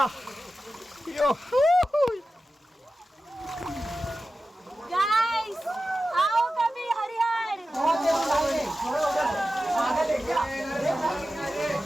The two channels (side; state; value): both; normal; correlation 0.93